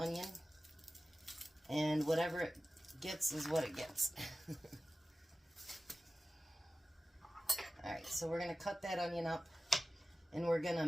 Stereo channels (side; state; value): both; normal; correlation 0.96